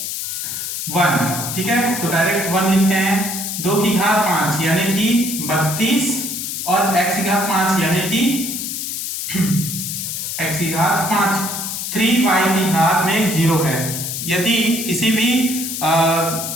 1 ठीक है, तो डायरेक्ट 1 लिखते हैं। 2 की घात 5 यानी कि 32 और x की घात 5 यानी कि x की घात 5 3y की घात में 0 है। यदि किसी भी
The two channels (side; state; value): left; noise; hiss, 4 dB below the sound